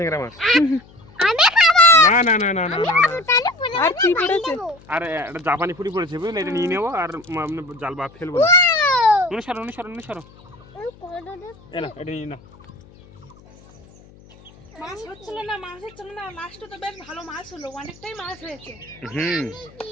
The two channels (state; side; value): noise; left; hum, 24 dB below the sound